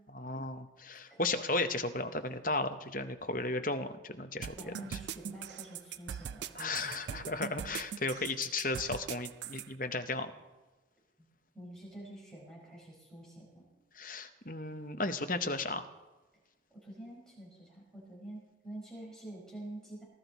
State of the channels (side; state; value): both; normal; correlation 0.12